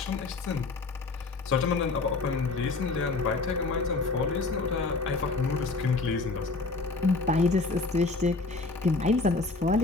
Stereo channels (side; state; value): right; quieter; 3.7 dB